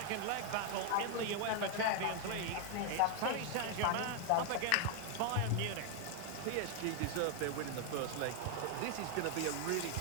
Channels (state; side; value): different; both; correlation 0.00